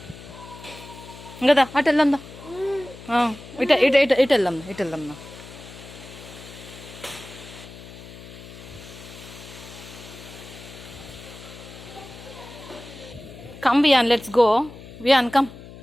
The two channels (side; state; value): left; noise; hum, 16 dB below the sound